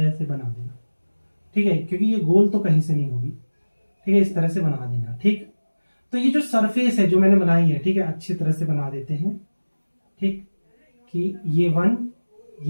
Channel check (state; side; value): inverted; both; correlation -1.00